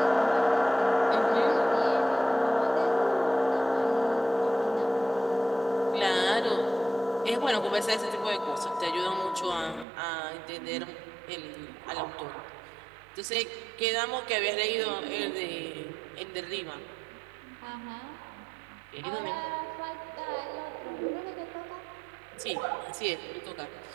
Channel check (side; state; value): left; drops out; at 9.9 s